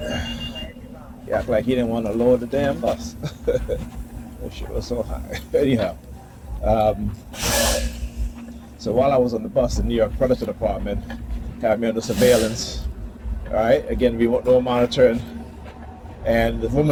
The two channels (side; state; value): both; identical; correlation 1.00